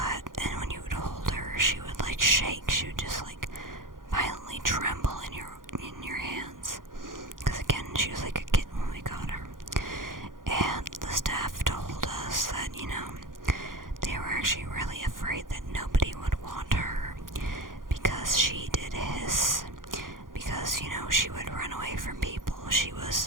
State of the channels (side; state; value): left; late; 0.90 ms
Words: And when you would hold her, she would like shake. She would just like violently tremble in your hands. Because again, she was like a kitten when we got her. And the staff told us that, they were actually really afraid that nobody would want her because she did hiss. Because, she would run away from people. She